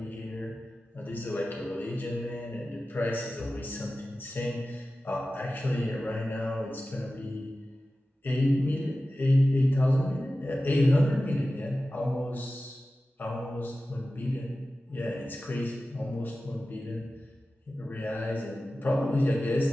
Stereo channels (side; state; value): both; normal; correlation 0.95